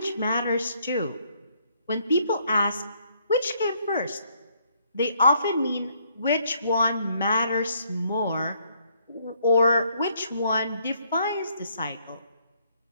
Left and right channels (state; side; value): inverted; both; correlation -0.69